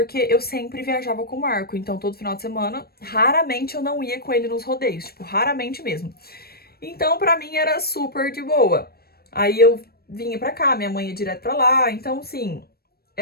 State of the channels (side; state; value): right; late; 0.45 ms